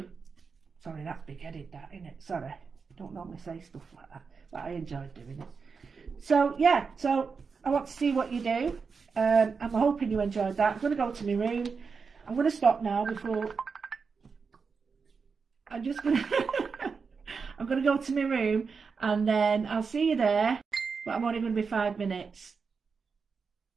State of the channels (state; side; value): quieter; left; 5.3 dB